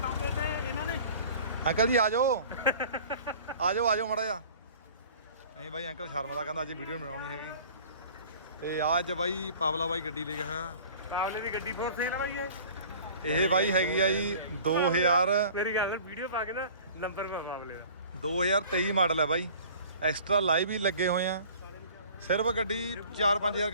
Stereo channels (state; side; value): inverted; both; correlation -0.47